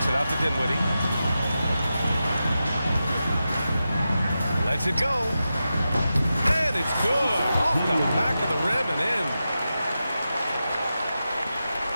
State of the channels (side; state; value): both; inverted; correlation -0.91